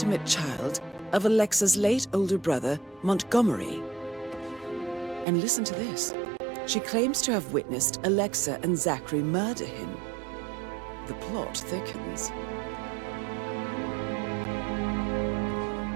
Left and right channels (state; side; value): drops out; left; at 5.2 s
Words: child of Alexa's late older brother, Montgomery. And listen to this. She claims to have witnessed Alexa and Zachary murder him. The plot thickens.